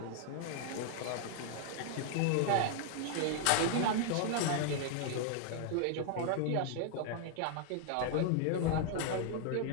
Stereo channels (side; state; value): both; different; correlation 0.00